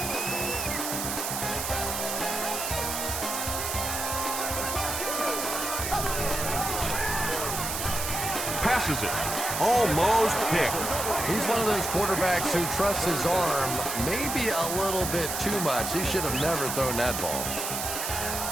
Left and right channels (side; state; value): right; noise; hiss, 3 dB below the sound